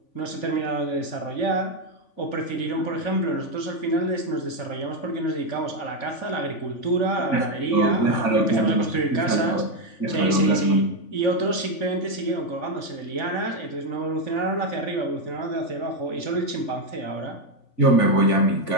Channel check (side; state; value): right; late; 3.5 ms